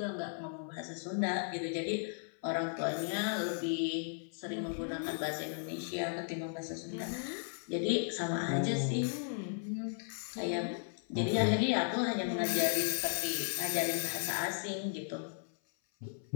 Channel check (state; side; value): silent; right; 54 dB below the other